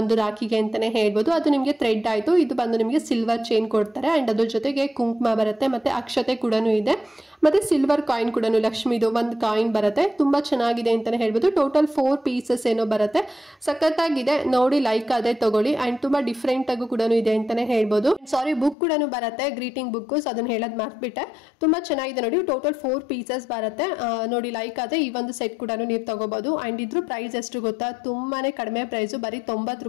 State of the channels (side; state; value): right; drops out; at 18.8 s